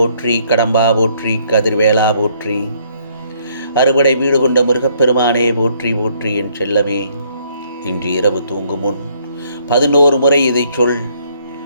கடம்பா போற்றி, கதிர்வேலா போற்றி, அறுபடை வீடு கொண்ட முருகப்பெருமானே போற்றி போற்றி. என் செல்லமே, இன்று இரவு தூங்கும் முன் 11 முறை இதை சொல்.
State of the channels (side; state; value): both; inverted; correlation -0.66